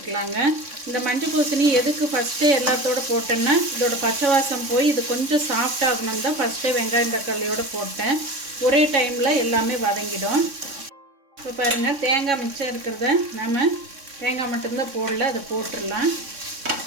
இந்த மஞ்சள் பூசணி எதுக்கு ஃபஸ்ட்டே எல்லாத்தோடு போட்டேன்னா இதோட பச்சை வாசம் போய் இது கொஞ்சம் சாஃப்ட் ஆகணும் தான் ஃபஸ்ட்டே வெங்காயம் தக்காளியோடு போட்டேன். ஒரே டைமில் எல்லாமே வதங்கிடும். இப்போ பாருங்கள், தேங்காய் மிச்சம் இருக்கிறத நம்ம தேங்காய் மட்டும்தான் போடல, அதை போட்டுடலாம்.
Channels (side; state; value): left; late; 3.6 ms